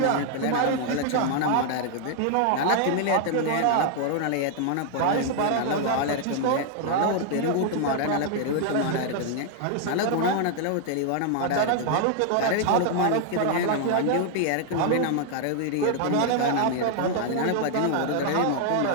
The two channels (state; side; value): different; both; correlation 0.00